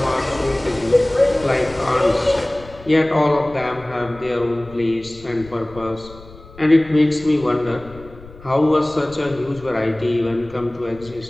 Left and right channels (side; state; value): left; noise; rumble, 20 dB below the sound